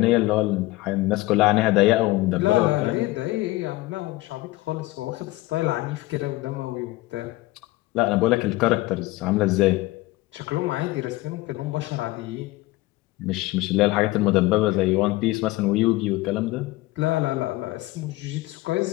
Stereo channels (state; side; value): quieter; right; 19.1 dB